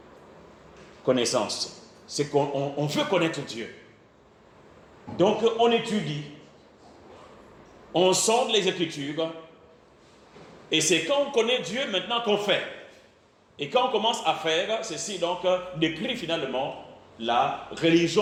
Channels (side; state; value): both; identical; correlation 1.00